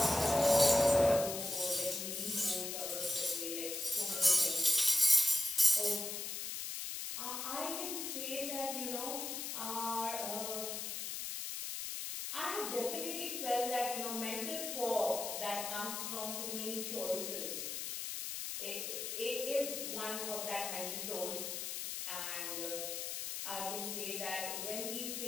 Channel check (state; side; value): noise; left; hiss, 4 dB below the sound